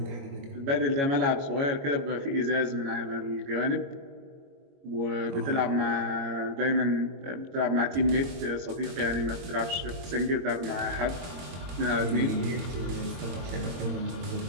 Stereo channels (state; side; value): late; left; 22 ms